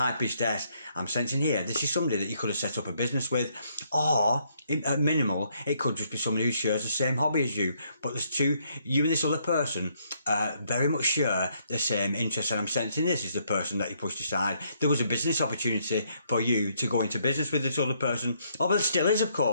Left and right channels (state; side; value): inverted; both; correlation -0.71